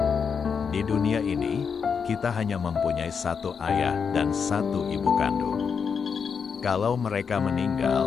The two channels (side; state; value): right; quieter; 6.2 dB